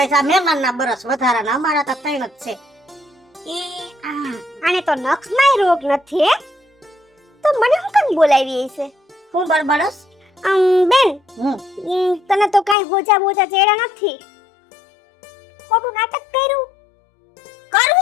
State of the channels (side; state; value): right; drops out; at 12.8 s